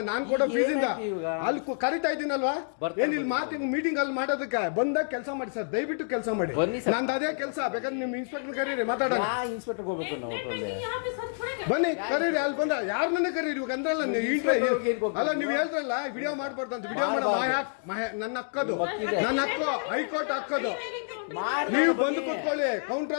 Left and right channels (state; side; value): silent; right; digital silence